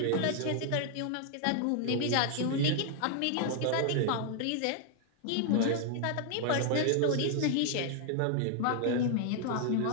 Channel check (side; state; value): both; different; correlation 0.00